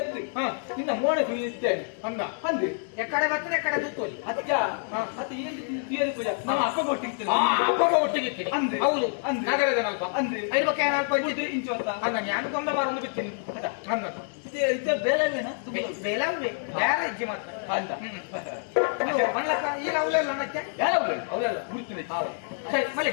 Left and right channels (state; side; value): silent; right; 58 dB below the other